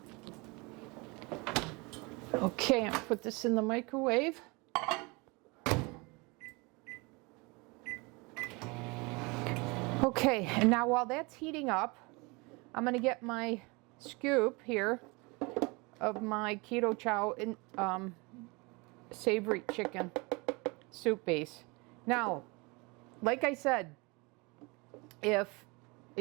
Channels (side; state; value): left; quieter; 27.1 dB